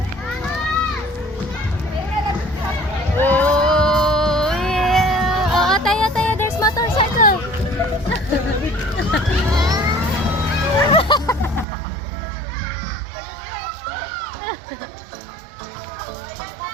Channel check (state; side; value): drops out; left; at 11.7 s